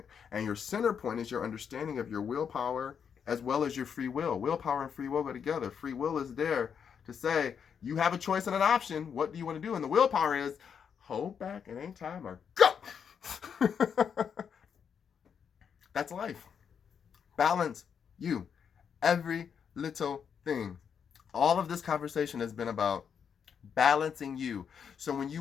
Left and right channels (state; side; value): quieter; right; 7.2 dB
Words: And your center point is your understanding of your willpower as well as your free will. Willpower and free will go together. Free will is there to say, you have a choice and an option. What do you want to do? And the willpower is, hold back, it ain't time, or go! That's life. Balance you. Every little thing. All of this conversation has been about balancing you. So when